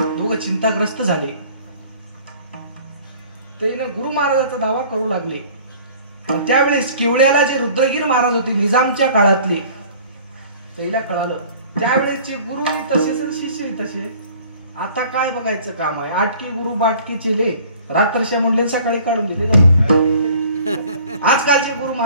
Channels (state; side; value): inverted; both; correlation -0.50